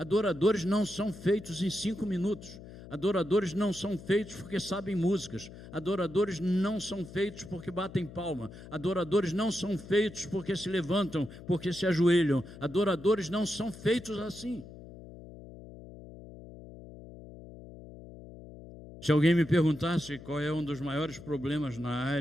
não são feitos em 5 minutos. Adoradores não são feitos porque sabem músicas. Adoradores não são feitos porque batem palma. Adoradores não são feitos porque se levantam, porque se ajoelham. Adoradores não são feitos assim. Se alguém me perguntasse qual é um dos maiores problemas na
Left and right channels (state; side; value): noise; left; hum, 16 dB below the sound